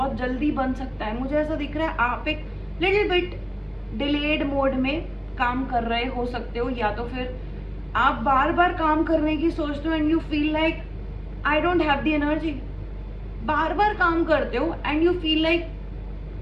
जल्दी बन सकता है. मुझे ऐसा दिख रहा है आप एक लिटिल बिट डिलेड मोड में काम कर रहे हो सकते हो, या तो फिर आप बार बार काम करने की सोचते हो and you feel like I don't have the energy. बार बार काम करते हो and you feel like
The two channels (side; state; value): both; identical; correlation 1.00